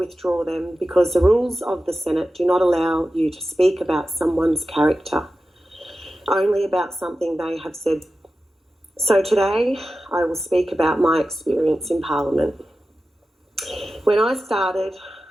them because the rules of the Senate do not allow you to speak about someone's character, only about something they have said. So today I will speak about my experience in Parliament. When I started,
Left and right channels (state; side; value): normal; both; correlation 0.93